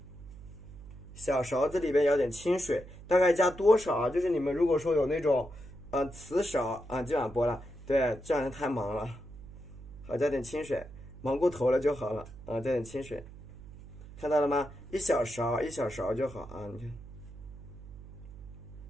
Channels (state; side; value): noise; right; hum, 16 dB below the sound